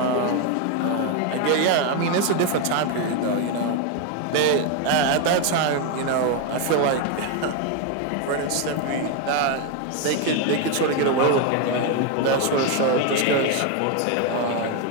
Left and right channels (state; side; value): different; both; correlation 0.02